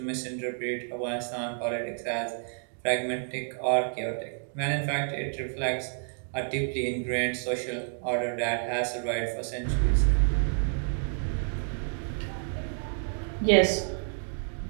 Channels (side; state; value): left; silent; 58 dB below the other